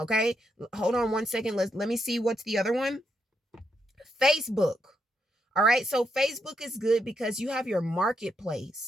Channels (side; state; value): both; normal; correlation 0.80